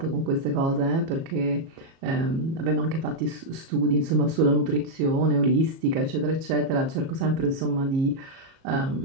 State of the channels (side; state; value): left; late; 37 ms